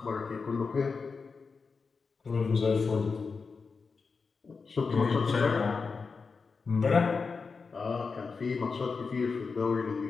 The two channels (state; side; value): quieter; right; 4.8 dB